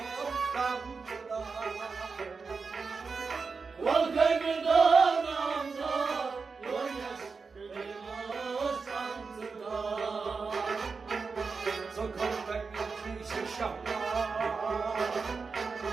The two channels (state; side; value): quieter; left; 4.8 dB